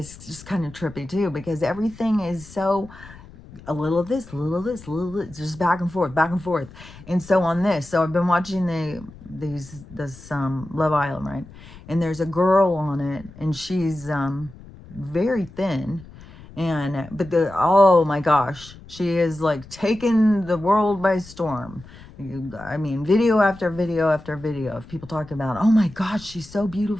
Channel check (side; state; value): left; noise; rumble, 19 dB below the sound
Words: just kind of trippy too, because everything is so a little of this, a little of this, a little of this, just back and forth, back and forth. And so on this, so I've been watching this Love Island, right? And there's a girl on it, and she's very thin, and but the oh my gosh, she is like taking the world by storm. I mean, video after video after video of people talking about, oh my gosh, she's so